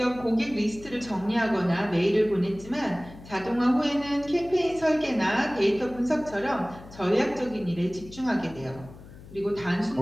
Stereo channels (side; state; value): left; noise; hum, 18 dB below the sound